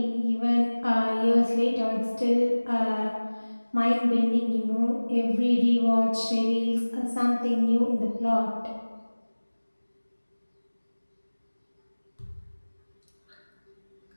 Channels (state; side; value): inverted; both; correlation -1.00